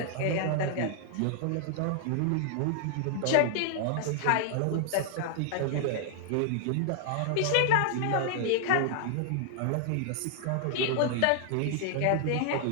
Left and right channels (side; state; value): both; different; correlation -0.01